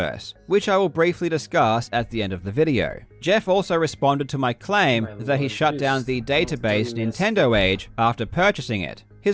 which I will briefly discuss at the end of the video. Jeff also responded to my claim that he shut down the database Nintendo Age after purchasing it.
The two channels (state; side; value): identical; both; correlation 1.00